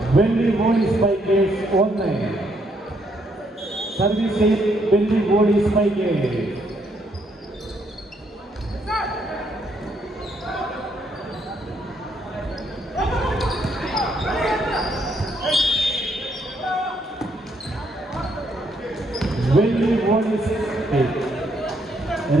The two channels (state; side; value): normal; both; correlation 0.73